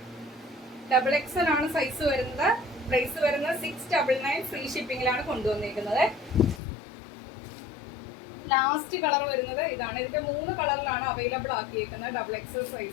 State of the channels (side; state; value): right; drops out; at 6.6 s